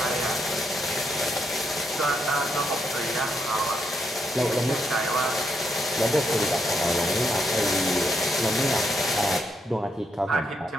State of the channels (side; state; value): both; normal; correlation 0.78